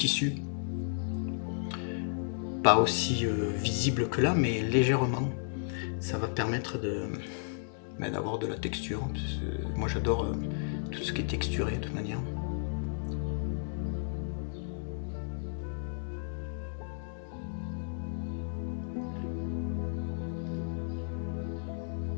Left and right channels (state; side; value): silent; right; digital silence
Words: Pas aussi visible que là, mais légèrement. Ça va permettre d'avoir de la texture. Moi j'adore tout ce qui est texturé de toute manière.